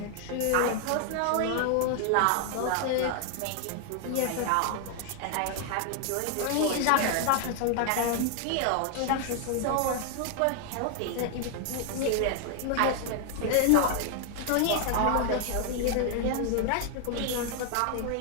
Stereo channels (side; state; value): both; different; correlation 0.00